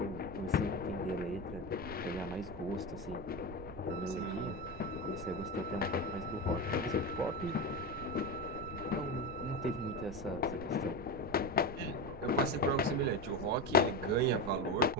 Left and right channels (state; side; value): noise; right; rumble, 13 dB below the sound